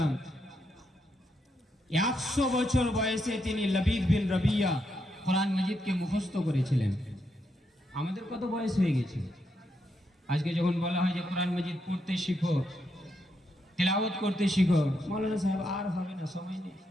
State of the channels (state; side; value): normal; both; correlation 0.80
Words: 100 বছর বয়সে তিনি লবিদ বিন রবিয়া কোরআন মজিদকে মুখস্থ করেছিলেন। আমাদের কত বয়স হয়ে গেছে? আজকে যখন বলা হয় যে কোরআন মজিদ পড়তে শিখো, তেলাওয়াত করতে শিখো, মৌলানা সাহেব আর হবে না, সময় নেই,